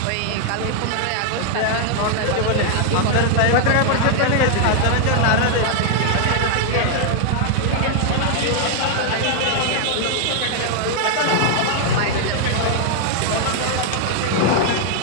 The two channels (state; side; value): different; both; correlation 0.00